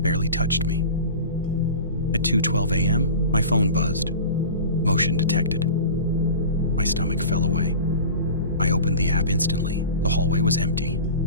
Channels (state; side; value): inverted; both; correlation -0.34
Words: touched me. At 2:12 a.m., my phone buzzed. Motion detected. My stomach fell away. I opened the app instantly. The hallway was empty.